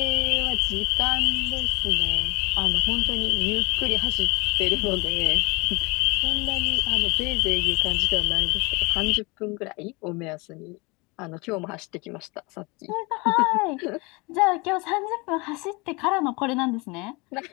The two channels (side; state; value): right; quieter; 26.8 dB